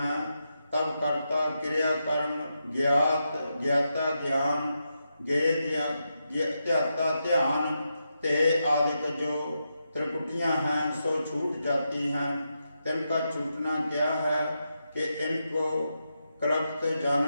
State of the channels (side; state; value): both; inverted; correlation -0.86